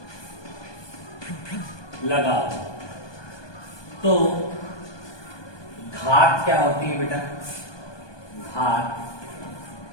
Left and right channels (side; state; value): right; late; 1.2 ms